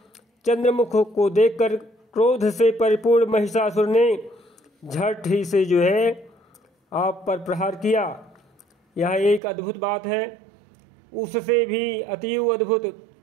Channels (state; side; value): drops out; left; at 9.4 s